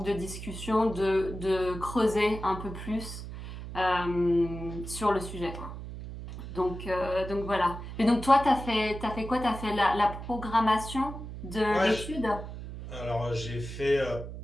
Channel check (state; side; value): noise; right; hum, 10 dB below the sound